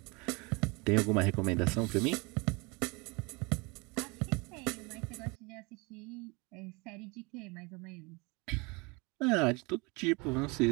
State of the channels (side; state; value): left; quieter; 27.7 dB